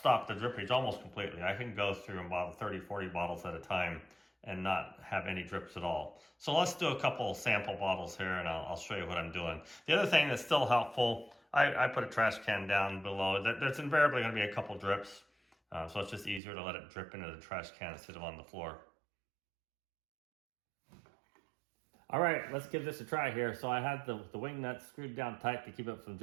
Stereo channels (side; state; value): left; drops out; at 16.4 s